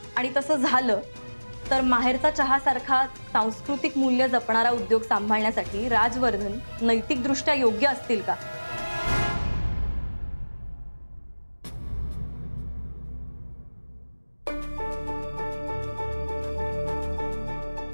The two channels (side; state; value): both; inverted; correlation -1.00